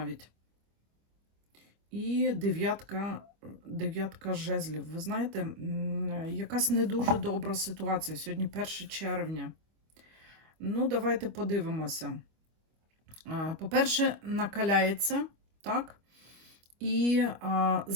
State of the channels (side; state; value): left; late; 25 ms